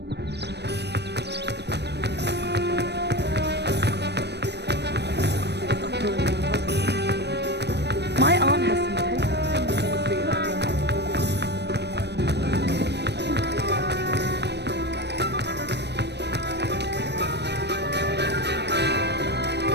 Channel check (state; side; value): late; left; 0.49 ms